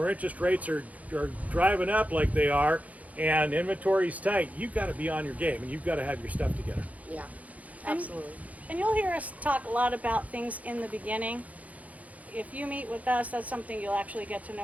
interest rates are driving up like they are and inventory's tight, you've got to be on your game and you've got to have your stuff together. Yeah, absolutely. And you'll hear us talk a lot about things in the beginning. If you meet with us, that's something you'll actually get to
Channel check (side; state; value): left; late; 0.071 ms